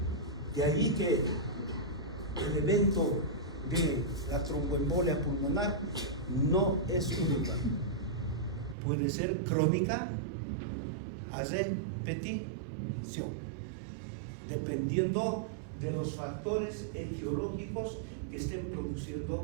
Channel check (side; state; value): left; drops out; at 8.8 s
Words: De ahí que el evento de la tromboembolia pulmonar no es única. Puede ser crónica a repetición, dependiendo de los factores etiológicos que estén